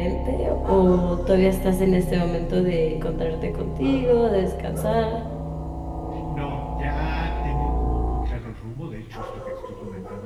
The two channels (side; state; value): both; identical; correlation 1.00